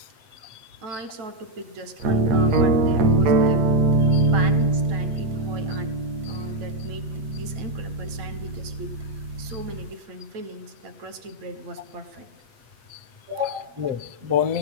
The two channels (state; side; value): late; left; 8.3 ms